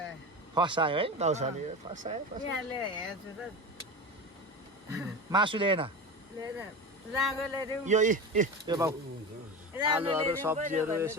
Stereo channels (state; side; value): normal; both; correlation 0.26